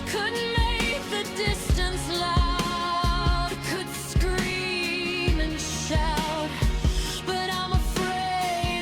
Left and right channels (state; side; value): identical; both; correlation 1.00